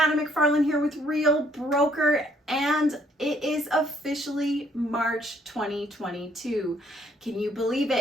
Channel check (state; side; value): normal; both; correlation 0.66